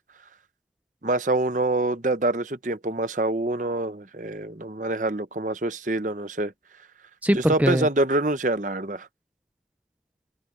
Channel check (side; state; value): both; normal; correlation 0.37